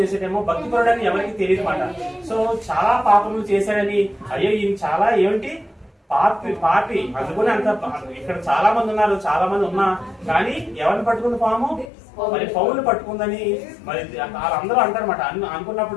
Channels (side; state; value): right; drops out; at 11.9 s